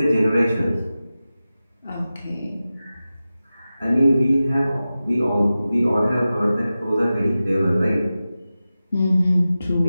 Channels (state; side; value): inverted; both; correlation -0.94